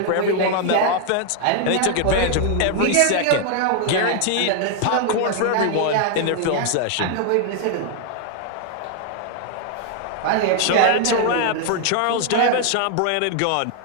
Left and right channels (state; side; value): different; both; correlation 0.00